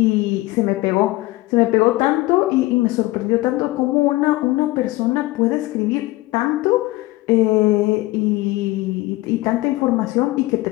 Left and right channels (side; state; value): right; quieter; 19.5 dB